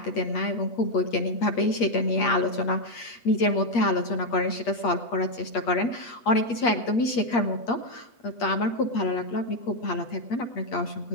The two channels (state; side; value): late; right; 8.5 ms